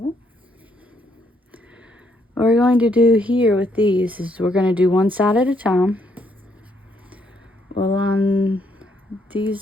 what we're going to do here with these is we're going to do one side at a time. We'll line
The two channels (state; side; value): normal; both; correlation 0.73